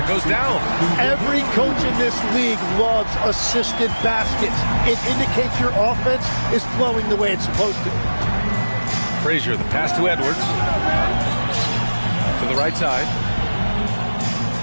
goes down. Every coach in this league loves assisted baskets. It indicates your offense is flowing the way it's supposed to. Frazier, the pass to Edwards. To the right side.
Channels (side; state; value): both; inverted; correlation -1.00